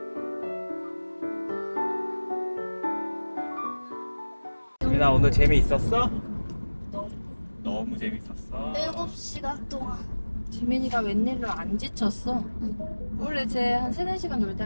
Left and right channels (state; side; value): inverted; both; correlation -1.00